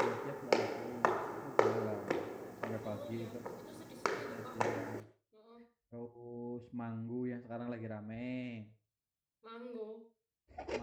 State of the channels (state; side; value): identical; both; correlation 1.00